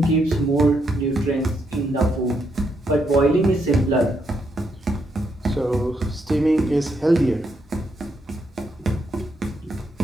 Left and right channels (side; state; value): both; normal; correlation 0.78